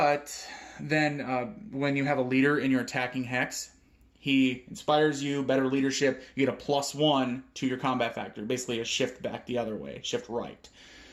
then when you have a leader in your attacking hex, he inspires you, better leadership. You get a +1 to your combat factor. Basically a shift back the other way, shift right.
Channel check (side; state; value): both; identical; correlation 1.00